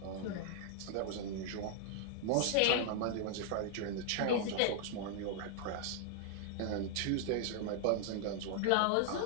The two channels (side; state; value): both; different; correlation 0.00